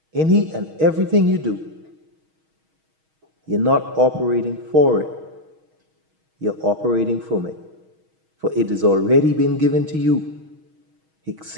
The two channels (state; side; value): late; left; 6.3 ms